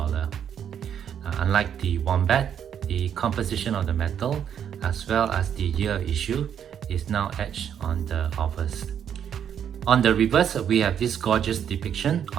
Unlike the Wombat, the composition of the metal as well as the year issue is now etched on the obverse. On the reverse, we have this gorgeous depiction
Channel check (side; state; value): left; quieter; 8.8 dB